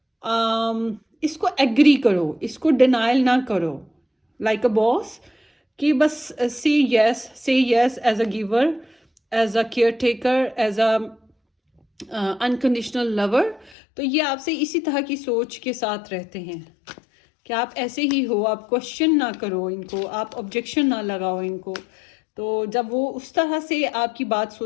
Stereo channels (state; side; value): drops out; right; at 13.8 s